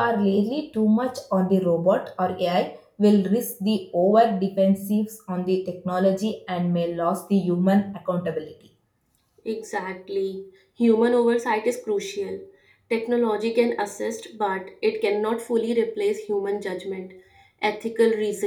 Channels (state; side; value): identical; both; correlation 1.00